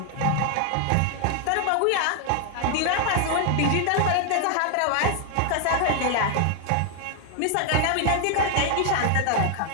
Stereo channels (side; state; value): both; different; correlation 0.00